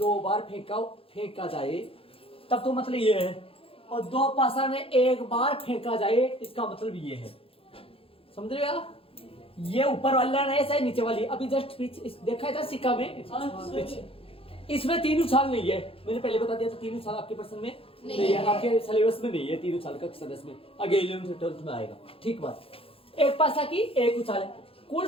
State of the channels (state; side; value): late; right; 0.27 ms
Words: बार फेंका जाए तब तो मतलब ये है, और 2 पासा ने 1 बार फेंका जाए इसका मतलब ये है। समझ रहे हो? ये ऊपर वाला नहीं है, चाहे नीचे वाली। अभी जस्ट देखा था सिक्का में पीछे, इसमें 3 उछाल नहीं है। मैंने पहले बता दिया था 3 उछाल आपके प्रश्न में नहीं है, आपके सिलेबस में नहीं है 3 उछाल का सदस्य में, आगे 11th से 12th में आएगा, ठीक बात। एक पासा की 1 उछाल है। कुल